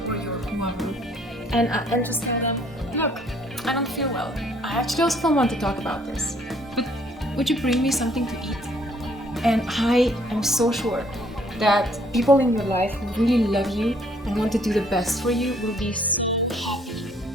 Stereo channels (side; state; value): both; normal; correlation 0.63